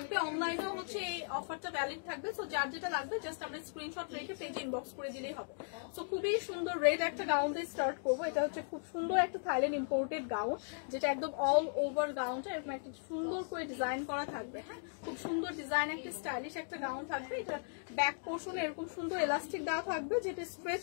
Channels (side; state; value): right; silent; digital silence